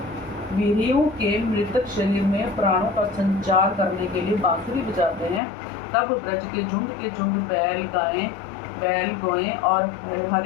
वीरियों के मृतक शरीर में प्राणों का संचार करने के लिए बांसुरी बजाते हैं, तब ब्रज के झुंड बैल गोएं और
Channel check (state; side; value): drops out; right; at 5.4 s